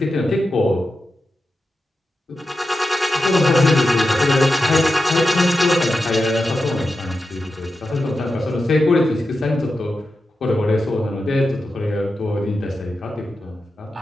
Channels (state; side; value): normal; both; correlation 0.90